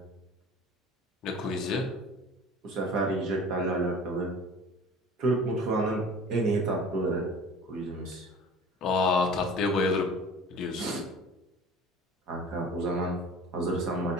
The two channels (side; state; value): both; normal; correlation 0.43